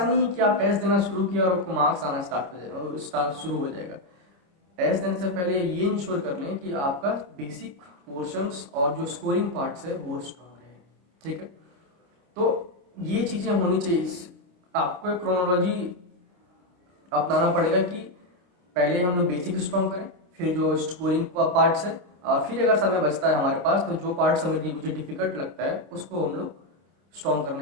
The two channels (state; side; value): late; left; 28 ms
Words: है कि आप टेस्ट देना शुरू किया और आपको मार्क्स आना शुरू हो जाएगा। टेस्ट देने से पहले ये इंश्योर कर लें कि आपका बेसिक पोर्शंस और जो स्कोरिंग पार्ट्स है वो स्ट्रांग रहे, ठीक है। तो ये चीज़ें होनी चाहिए। आपको एक क्रोनोलॉजी अपनाना पड़ेगा कि पहले हम लोग बेसिक स्ट्रांग करें, फिर जो स्कोरिंग पार्ट्स है, और फिर अगर समय बचता है हमारे पास तो जो पार्ट्स हमें मुझे डिफिकल्ट लगता है उसको हम लोग स्ट्रांग